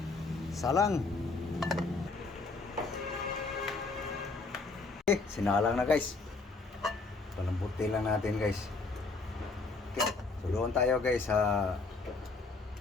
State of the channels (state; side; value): quieter; right; 3.9 dB